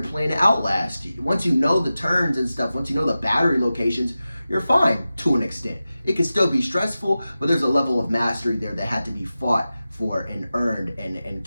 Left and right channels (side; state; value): both; inverted; correlation -0.94